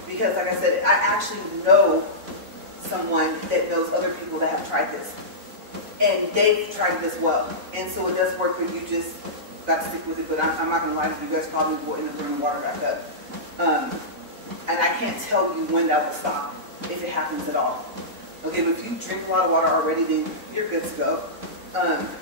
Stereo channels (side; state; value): left; late; 4.0 ms